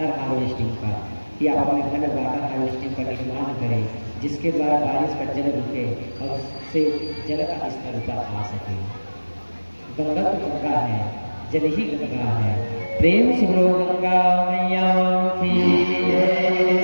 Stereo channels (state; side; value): inverted; both; correlation -1.00